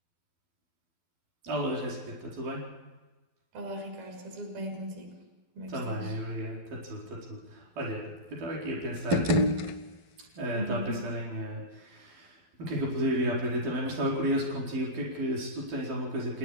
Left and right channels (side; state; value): left; late; 12 ms